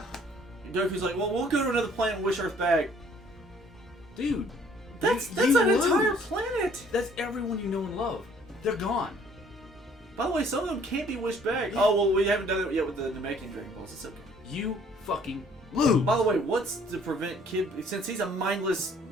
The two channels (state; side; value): normal; both; correlation 0.59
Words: like, well, we'll go to another planet and wish Earth back. Dude, That's they an lose. entire planet. That's everyone you know and love. They're gone. By the way, some of them can't be wished back. Oh, well, we haven't done it yet with the Namekian Dragon Balls. It's okay. You fucking lose. By the way, what's to prevent Kid... Since he's a mindless